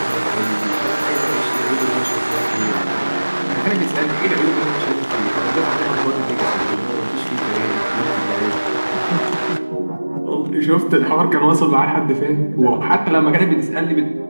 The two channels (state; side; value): inverted; both; correlation -1.00